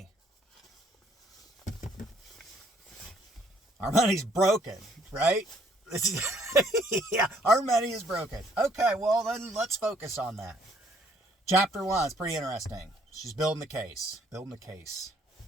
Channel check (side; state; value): both; normal; correlation 0.64